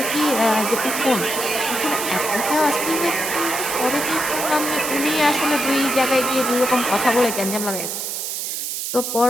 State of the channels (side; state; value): right; noise; hiss, 4 dB below the sound